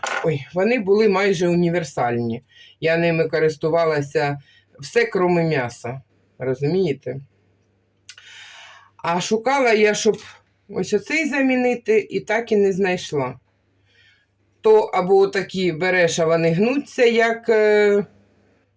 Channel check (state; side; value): identical; both; correlation 1.00